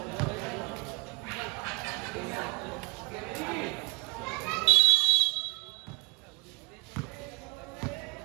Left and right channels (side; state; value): left; quieter; 29.9 dB